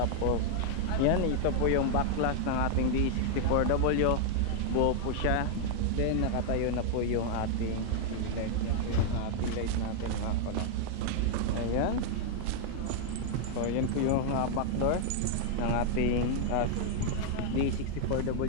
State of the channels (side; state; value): both; different; correlation -0.01